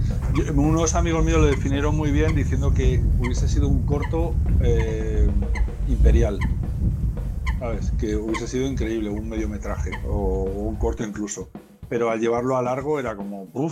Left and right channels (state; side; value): identical; both; correlation 1.00